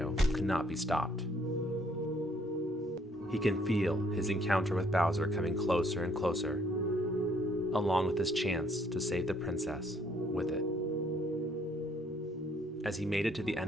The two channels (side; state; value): both; normal; correlation 0.65